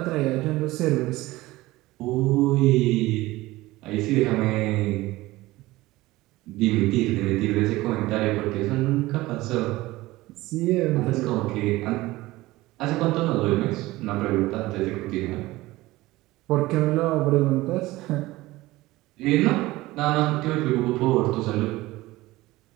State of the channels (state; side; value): quieter; left; 18.7 dB